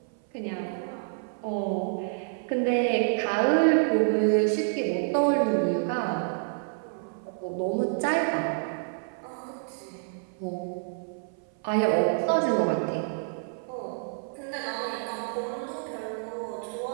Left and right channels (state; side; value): silent; left; 56 dB below the other